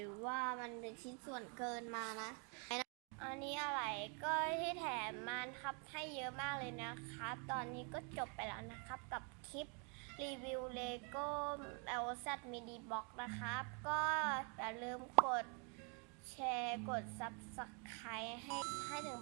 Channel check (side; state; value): left; quieter; 36.4 dB